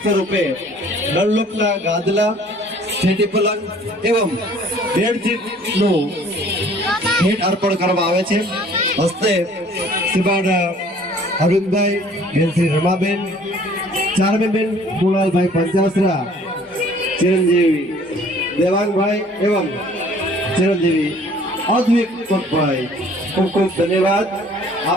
સ્વરૂપે ડનલોપના ગાદલા, સ્ટેટી પલંગ એવં બેડશીટનું ભેટ અર્પણ કરવામાં આવે છે. હસ્તે શ્રીમાન અરવિંદભાઈ, બેન શ્રી રમાબેન, ચારમીબેન કુણાલભાઈ પંચાસરા, ચિરંજીવી દેવાંગભાઈ એવં ચિરંજીવી અદ્વિક કોટભાઈ, ખૂબ ખૂબ ધન્યવાદ.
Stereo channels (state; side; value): normal; both; correlation 0.54